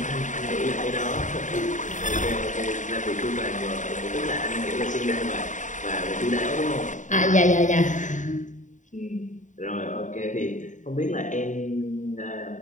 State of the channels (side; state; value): right; late; 0.36 ms